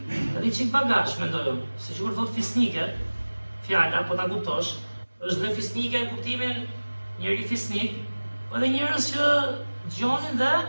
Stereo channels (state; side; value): inverted; both; correlation -1.00